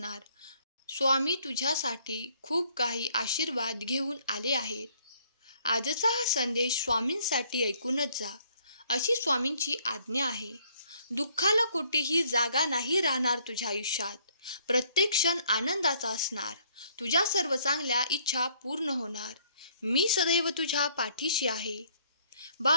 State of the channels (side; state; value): both; inverted; correlation -0.64